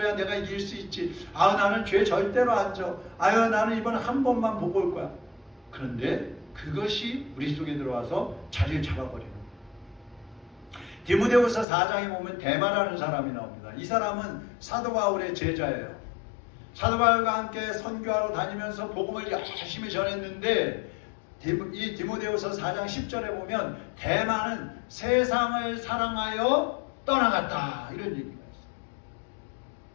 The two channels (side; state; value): right; drops out; at 11.7 s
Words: 내가 이길 수 있지. 나는 죄 절대로 안 져. 나는 이번에 한 번만 보고 올 거야. 그런데 그것이 우리 속에 들어와서 자리를 잡아버리는 거예요. 디모데후서 4장에 보면 데마라는 사람이 나옵니다. 이 사람은 사도 바울의 제자예요. 사도 바울과 함께 선교하러 다니면서 복음을 열심히 전했는데 이 디모데후서 4장 10절에 보면 데마는 세상을 사랑하여 떠나갔다 이런 얘기가 있어요.